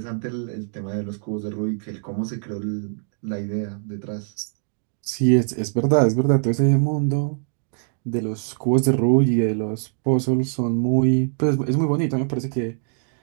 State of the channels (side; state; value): left; silent; digital silence